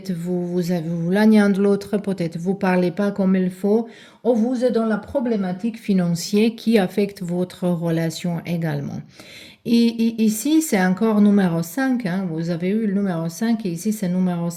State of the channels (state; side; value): identical; both; correlation 1.00